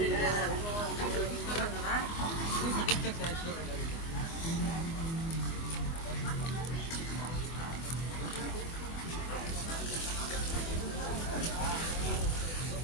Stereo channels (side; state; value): right; late; 24 ms